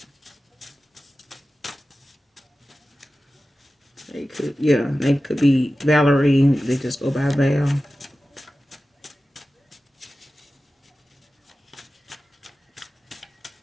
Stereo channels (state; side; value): normal; both; correlation 0.95